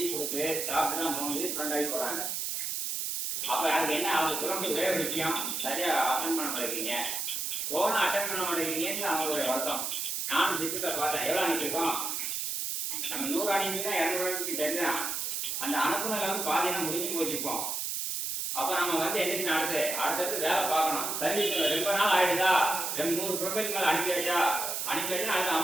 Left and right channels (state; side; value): noise; right; hiss, 2 dB below the sound